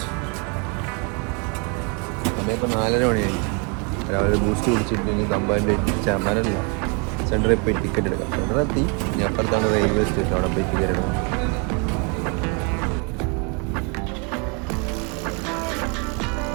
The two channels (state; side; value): quieter; left; 33.8 dB